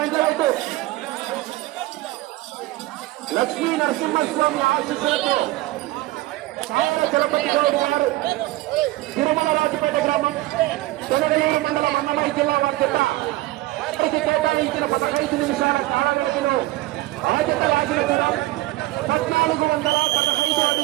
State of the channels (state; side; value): quieter; left; 18.2 dB